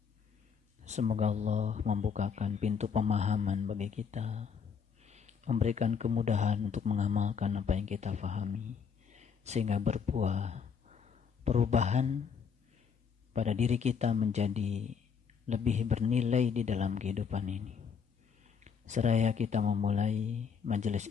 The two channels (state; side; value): quieter; right; 6.6 dB